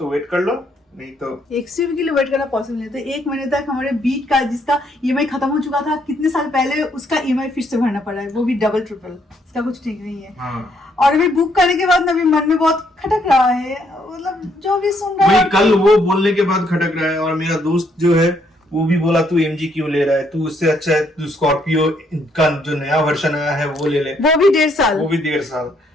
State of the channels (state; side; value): normal; both; correlation 0.71